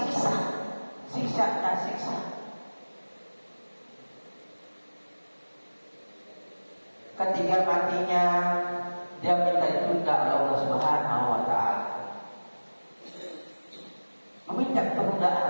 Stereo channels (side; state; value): both; inverted; correlation -1.00